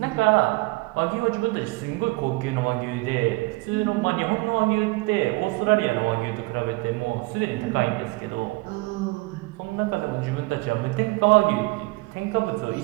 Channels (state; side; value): quieter; left; 23.8 dB